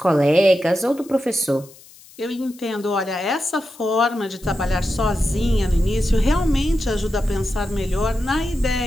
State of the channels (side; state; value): left; noise; hiss, 23 dB below the sound